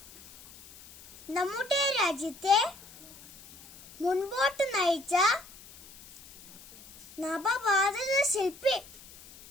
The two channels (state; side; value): noise; left; hiss, 21 dB below the sound